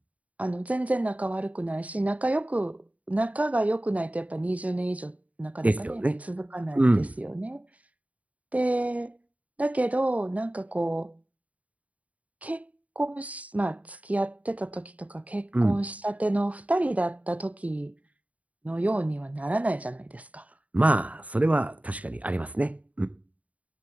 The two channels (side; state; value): left; late; 0.070 ms